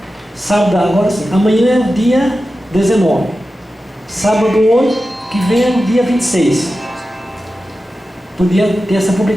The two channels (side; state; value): both; normal; correlation 0.93